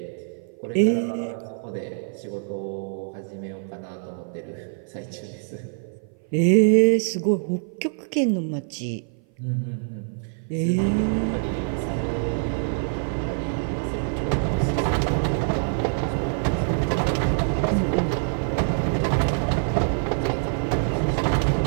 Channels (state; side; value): silent; left; 56 dB below the other